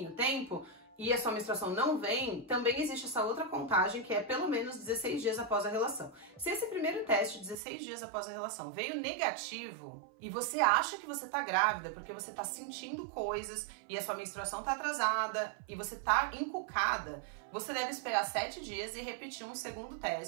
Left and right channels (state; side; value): drops out; left; at 7.6 s